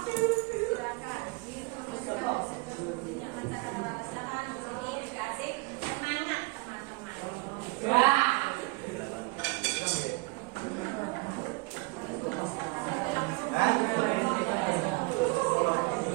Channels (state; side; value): quieter; left; 26.2 dB